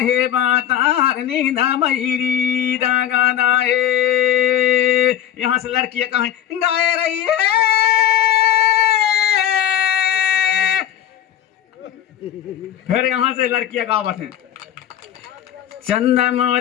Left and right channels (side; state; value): right; quieter; 10.7 dB